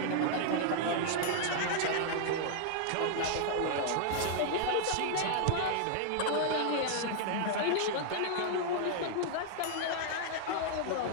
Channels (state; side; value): different; both; correlation -0.01